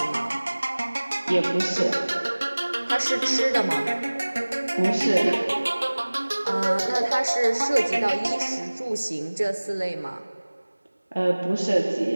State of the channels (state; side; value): inverted; both; correlation -1.00